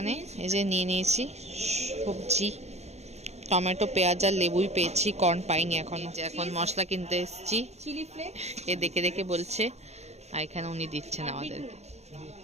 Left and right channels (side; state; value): left; late; 0.31 ms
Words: এই যে নিয়ে নিয়েছি সবজি, টমেটো, পেঁয়াজ আর লেবুই পেয়েছি, কর্ন পাইনি এখনো। এখন মশলা কিনতে এসেছি, চিলি ফ্লেক্স এ দেখে দেখে বলছে, আর এখানে উনি দিচ্ছেন আমাদের।